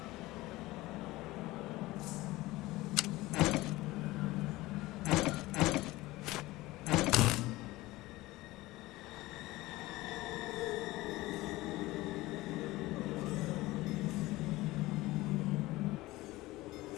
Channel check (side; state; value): right; quieter; 19.0 dB